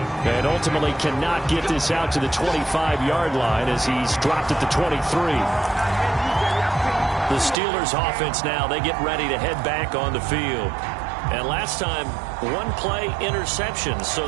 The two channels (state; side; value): drops out; left; at 7.6 s